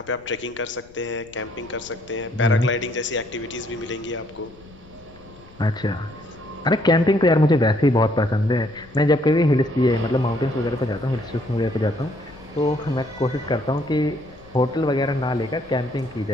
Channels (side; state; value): left; noise; rumble, 24 dB below the sound